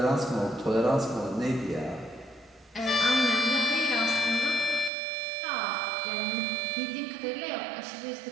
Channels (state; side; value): drops out; left; at 4.9 s